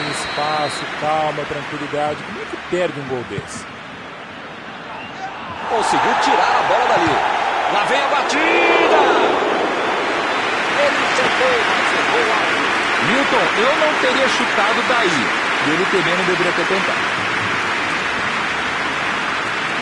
espaço, calma, tranquilidade. Como é que perde um gol desse? Conseguiu tirar a bola dali. Lá vem a batida! Ele tentou, mas errou alto. Milton, eu não teria chutado daí. E ele também não deveria ter tentado.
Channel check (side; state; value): both; identical; correlation 1.00